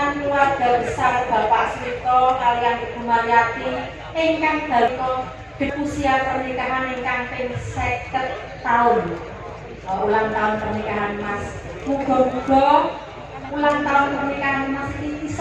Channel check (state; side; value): identical; both; correlation 1.00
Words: keluarga besar Bapak Swito kaliyan Ibu Maryati ingkang dalu usia pernikahan ingkang ping 50 tahun. Ulang tahun pernikahan Mas. Muga-muga ulang tahun pernikahan Mas iki